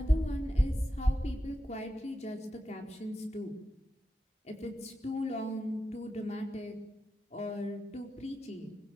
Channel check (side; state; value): both; normal; correlation 0.90